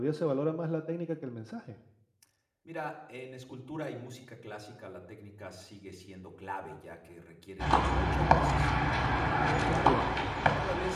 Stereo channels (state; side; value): identical; both; correlation 1.00